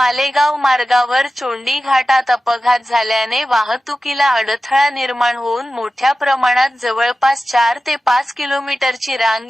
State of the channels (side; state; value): both; normal; correlation 0.94